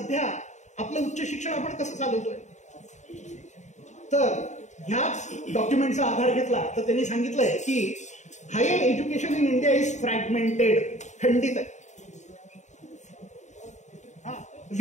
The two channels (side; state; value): right; late; 0.34 ms